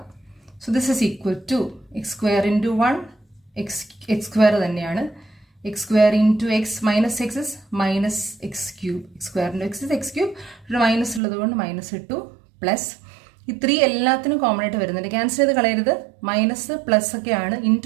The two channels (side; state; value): left; drops out; at 11.2 s